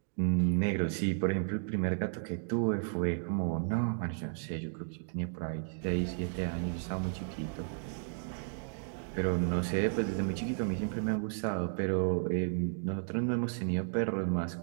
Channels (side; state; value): left; silent; digital silence